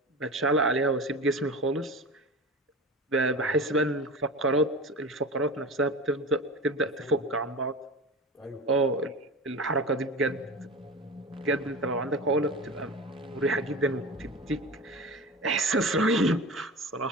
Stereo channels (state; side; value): normal; both; correlation 0.30